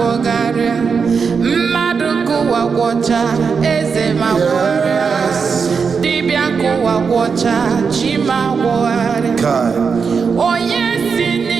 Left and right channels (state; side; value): quieter; left; 5.6 dB